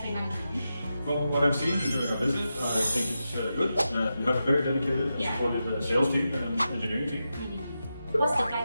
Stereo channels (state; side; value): inverted; both; correlation -0.90